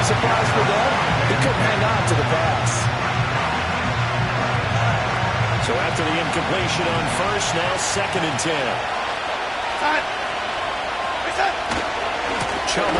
surprise for them, he couldn't hang on to the pass. So after the incompletion on first, now 2nd and 10. Chubb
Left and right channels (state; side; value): identical; both; correlation 1.00